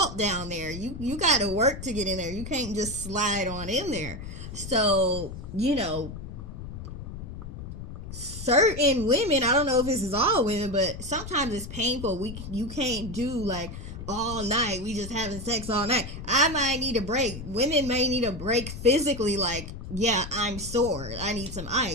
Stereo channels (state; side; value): noise; left; rumble, 10 dB below the sound